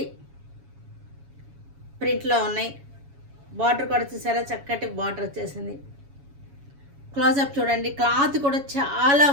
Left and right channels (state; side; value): late; left; 7.2 ms